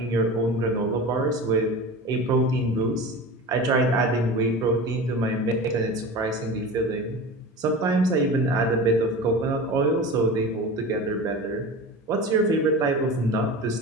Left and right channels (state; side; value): normal; both; correlation 0.32